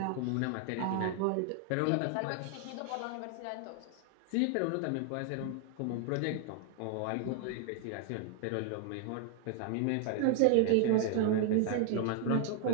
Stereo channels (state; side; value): different; both; correlation 0.00